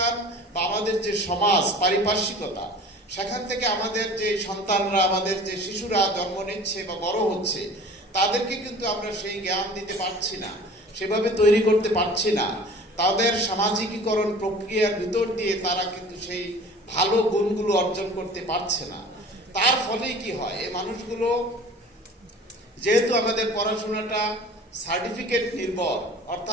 বা আমাদের যে সমাজ পারিপার্শ্বিকতা, সেখান থেকে আমাদের যে সন্তানরা, আমাদের যে শিশুরা জন্ম নিচ্ছে বা বড় হচ্ছে, তাদেরকে কিন্তু আমরা সেই জ্ঞান দিতে পারছি না, সেভাবে তৈরি করতে পারছি না। তাদের সামাজিকীকরণ প্রক্রিয়ার ভিতর দিয়ে তারা কিন্তু সেই ভালো গুণগুলো অর্জন করতে পারছে না। তার ফলে কি হয়, এই মানুষগুলো, যেহেতু আমাদের পড়াশোনাটা সার্টিফিকেট নির্ভর,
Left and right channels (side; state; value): both; normal; correlation 0.43